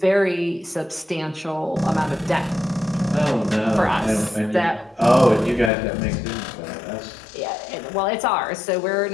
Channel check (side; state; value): right; drops out; at 5.7 s